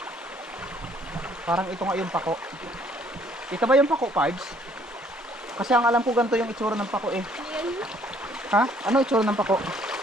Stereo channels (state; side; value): normal; both; correlation 0.62